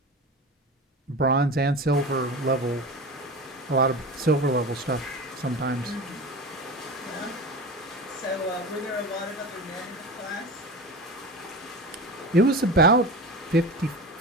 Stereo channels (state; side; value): normal; both; correlation 0.29